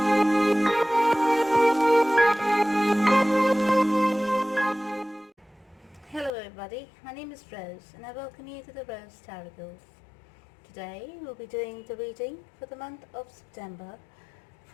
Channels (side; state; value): right; drops out; at 6.3 s